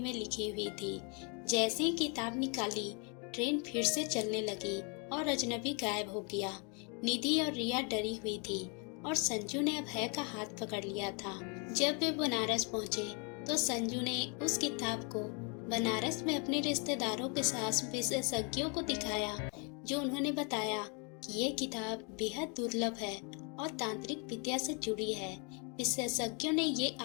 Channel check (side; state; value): right; quieter; 35.2 dB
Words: लिखी हुई थी। जैसे ही किताब निकाली, ट्रेन फिर से चलने लगी और अजनबी गायब हो गया। निधि और रिया डरी हुई थी और संजू ने अभय का हाथ पकड़ लिया था। जब वे बनारस पहुंचे तो संजू ने उस किताब को बनारस में अपने रिश्तेदारों के साथ विशेषज्ञों को दिखाया, जो उन्होंने बताया कि ये किताब बेहद दुर्लभ है और तांत्रिक विद्या से जुड़ी है। विशेषज्ञों ने ये